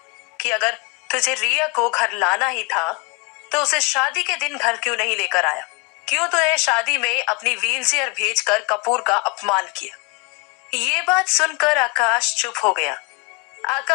कि अगर तुझे रिया को घर लाना ही था तो उसे शादी के दिन घर क्यों नहीं लेकर आया? क्यों तूने शादी में अपनी व्हीलचेयर भेजकर कपूर का अपमान किया? ये बात सुनकर आकाश चुप हो गया।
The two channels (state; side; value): quieter; right; 29.7 dB